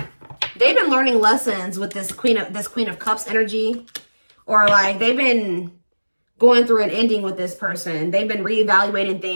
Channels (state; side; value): inverted; both; correlation -1.00